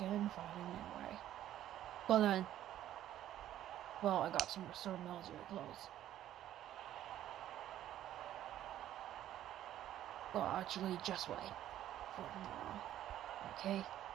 invited anyway. But then, well, I got some restored military clothes. Well, actually, just wait for tomorrow. Okay?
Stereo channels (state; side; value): quieter; left; 12.3 dB